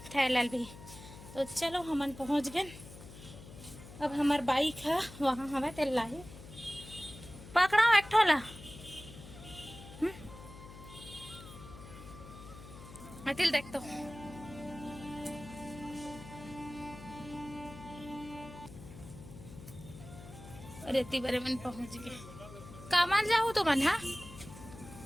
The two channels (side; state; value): left; noise; hum, 16 dB below the sound